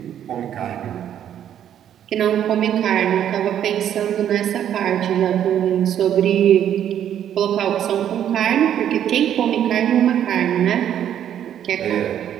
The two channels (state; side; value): quieter; left; 10.1 dB